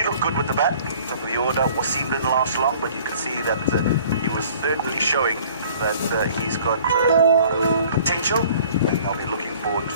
looked good with the bat, top of the order. Wasim didn't last long, but you can see that he was certainly showing that he's got a lot of potential, and I'll be looking forward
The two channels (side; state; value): both; inverted; correlation -0.52